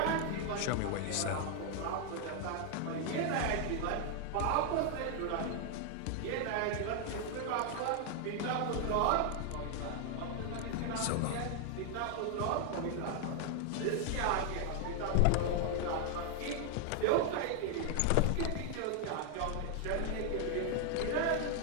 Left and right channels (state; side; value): different; both; correlation 0.00